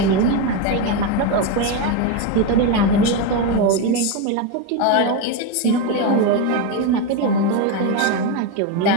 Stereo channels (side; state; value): both; different; correlation 0.04